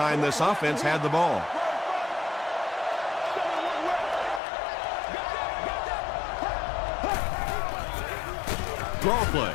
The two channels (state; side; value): drops out; right; at 4.4 s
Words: this offense had the ball. Draw play.